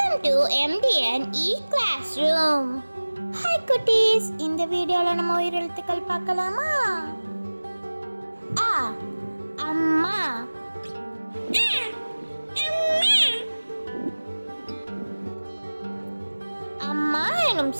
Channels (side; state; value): both; inverted; correlation -1.00